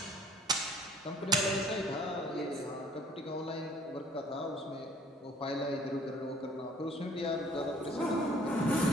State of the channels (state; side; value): normal; both; correlation 0.55